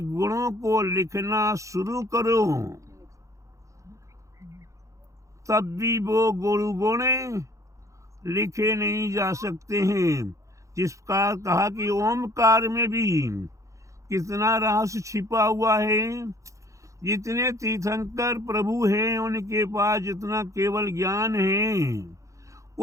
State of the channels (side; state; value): left; late; 0.15 ms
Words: गुणों को लिखना शुरू करो, तब भी वो गुरु गुण लिखे नहीं जा सकते हैं। जिस प्रकार कहा कि ओमकार में भी कितना रहस्य छिपा हुआ है। जितने तीर्थंकर प्रभु हैं उनके पास जितना केवल ज्ञान है,